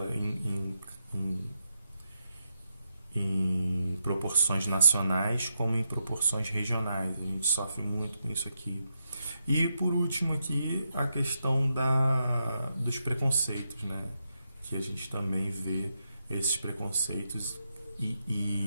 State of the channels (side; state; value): both; inverted; correlation -0.84